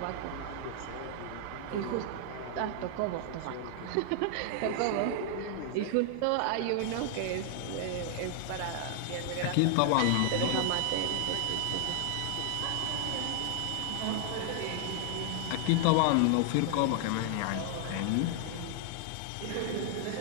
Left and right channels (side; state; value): both; different; correlation 0.00